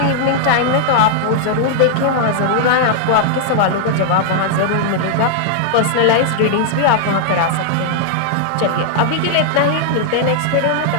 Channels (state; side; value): different; both; correlation -0.01